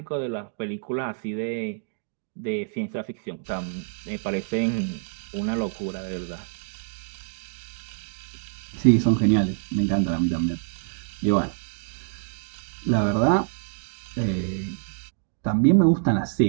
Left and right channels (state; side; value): silent; left; digital silence